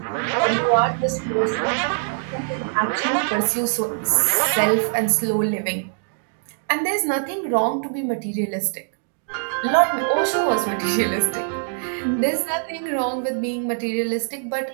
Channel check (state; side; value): silent; left; digital silence